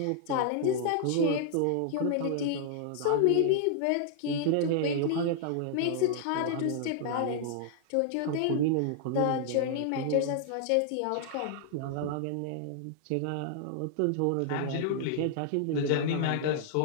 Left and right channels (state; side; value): different; both; correlation -0.01